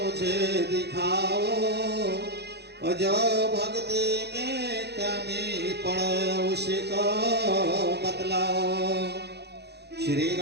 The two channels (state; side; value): late; left; 0.48 ms